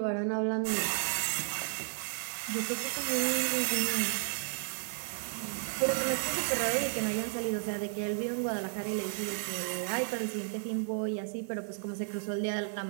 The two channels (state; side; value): silent; left; 56 dB below the other